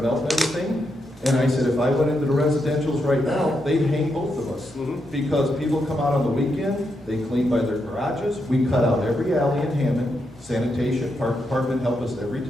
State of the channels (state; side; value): normal; both; correlation 0.82